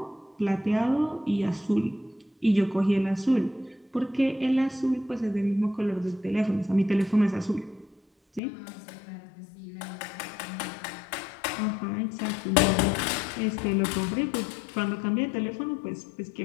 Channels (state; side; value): drops out; right; at 8.4 s